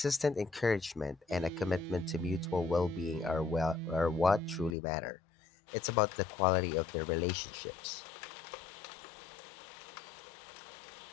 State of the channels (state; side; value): drops out; right; at 4.8 s